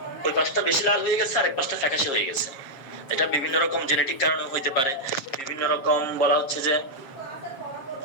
ওই পাশটা বেশি লাল হয়ে গেছে আরেক পাশটা ফ্যাকাশে হয়ে গেছে। এটা বিভিন্ন রকম জেনেটিক কারণে হইতে পারে, বিভিন্ন রকম বলা হচ্ছে যে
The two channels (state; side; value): late; right; 7.4 ms